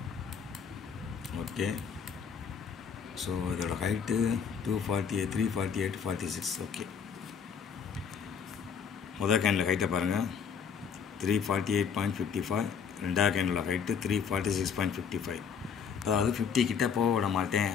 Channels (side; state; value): right; quieter; 6.8 dB